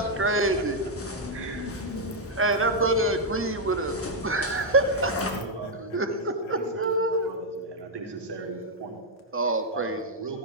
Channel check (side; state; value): both; normal; correlation -0.02